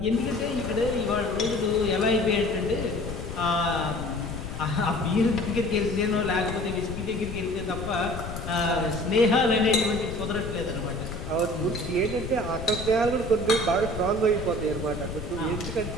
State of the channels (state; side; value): noise; left; rumble, 7 dB below the sound